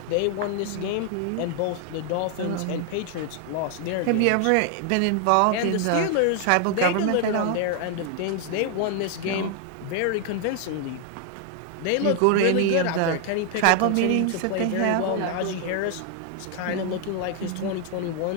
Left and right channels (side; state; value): both; different; correlation 0.00